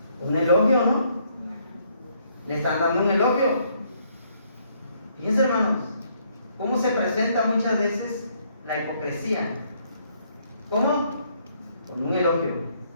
Un elogio, ¿no? Le están dando un elogio. Fíjense, hermanos, cómo se presenta muchas veces la hipocresía. ¿Cómo? Con un elogio.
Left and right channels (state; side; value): inverted; both; correlation -0.69